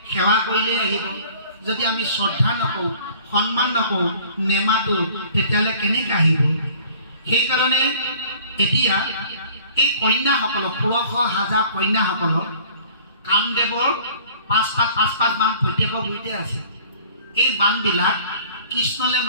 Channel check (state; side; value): inverted; both; correlation -0.50